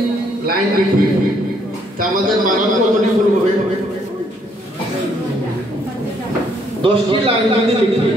লাইন লিখি তা আমাদের বানান কতটি ভুল হবে? 10টি লাইন যদি লিখি,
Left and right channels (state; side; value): normal; both; correlation 0.69